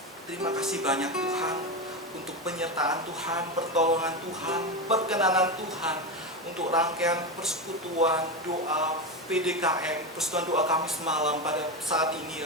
Terima kasih banyak Tuhan untuk penyertaan Tuhan, pertolongan Tuhan, perkenanan Tuhan untuk rangkaian persekutuan doa PDKM, persekutuan doa Kamis malam pada saat ini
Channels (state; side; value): normal; both; correlation 0.16